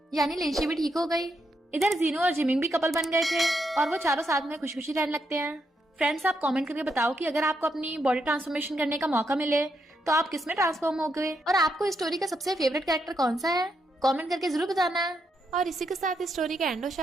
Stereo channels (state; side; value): normal; both; correlation 0.80